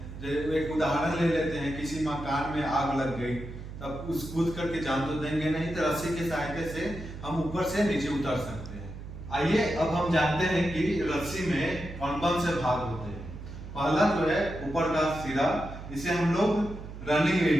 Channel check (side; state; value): right; noise; hum, 11 dB below the sound